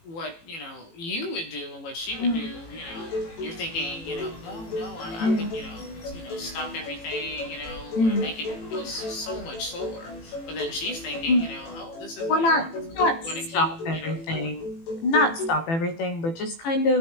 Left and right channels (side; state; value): right; late; 18 ms